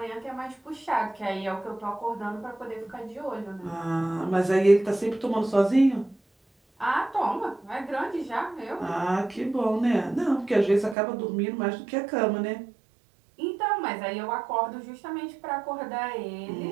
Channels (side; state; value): left; drops out; at 11.0 s